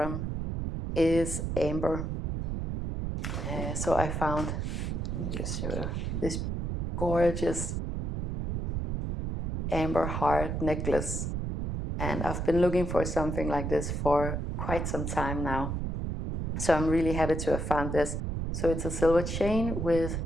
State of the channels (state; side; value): noise; right; rumble, 2 dB below the sound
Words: is amber. So I found, let me just show you, this gorgeous amber heart necklace, and I've been looking for something like this for quite some time now. So I'm really happy to have found this. So it's a silver chain with